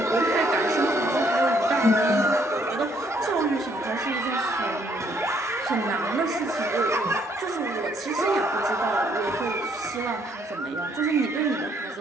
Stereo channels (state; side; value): normal; both; correlation 0.68